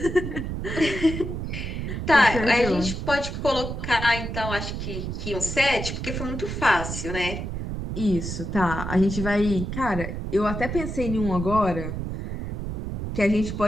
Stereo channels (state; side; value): noise; right; rumble, 5 dB below the sound